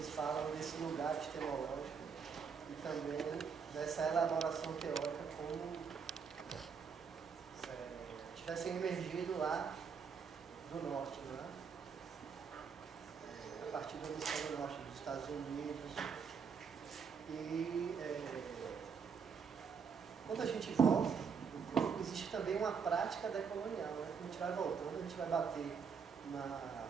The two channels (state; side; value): quieter; left; 6.2 dB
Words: falam desse lugar epistemológico e também dessa elaboração teórica como tivessem emergido lá do norte, né? A partir do hemisfério norte dos Estados Unidos. E quando a gente volta, existe também uma prática decolonial, né? Quando a gente vai voltando, a gente vai bater